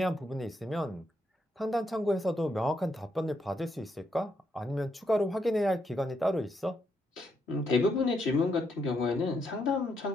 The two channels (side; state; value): both; normal; correlation 0.78